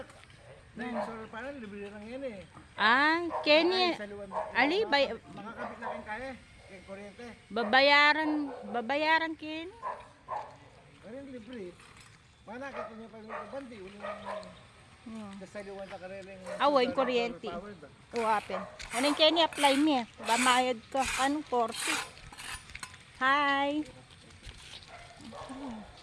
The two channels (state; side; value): identical; both; correlation 1.00